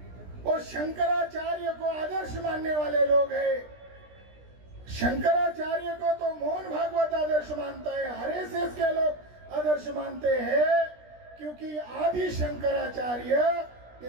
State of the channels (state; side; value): late; left; 17 ms